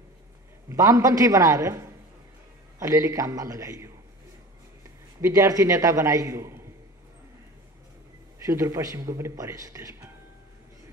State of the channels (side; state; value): both; normal; correlation 0.38